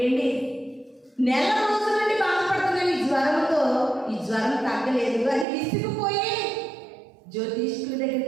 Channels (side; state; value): left; drops out; at 5.5 s